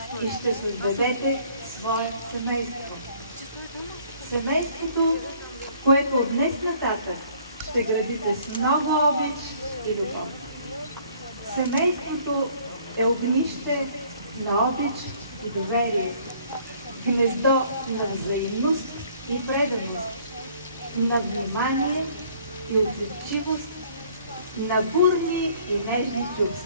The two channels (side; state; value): both; inverted; correlation -0.58